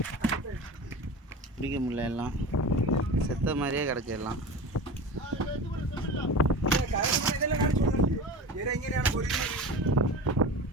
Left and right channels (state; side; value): normal; both; correlation 0.31